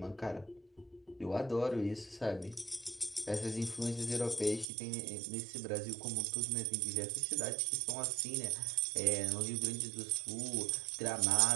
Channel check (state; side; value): drops out; left; at 4.7 s